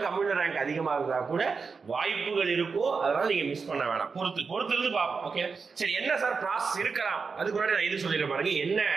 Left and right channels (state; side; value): quieter; left; 5.0 dB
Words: கம்யூனல் ரேங்க் அதிகமா இருந்தா கூட வாய்ப்புகள் இருக்கும். அதனால நீங்க மிஸ் பண்ண வேணாம், பொறுத்து இருந்து பார்ப்போம். ஓகே, சரி, என்ன சார் ப்ராசஸ் இருக்கலாம்? அதுக்கு முன்னாடி நான் இது சொல்லிடுறேன் பாருங்க. என்ன